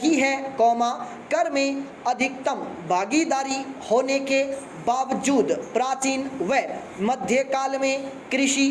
है, कर में अधिकतम भागीदारी होने के बावजूद प्राचीन व मध्यकाल में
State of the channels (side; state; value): both; identical; correlation 1.00